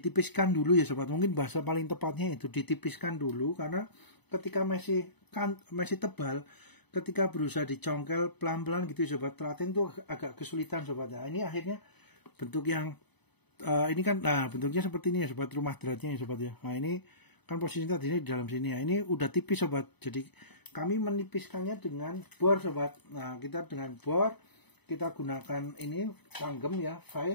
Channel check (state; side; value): late; right; 0.99 ms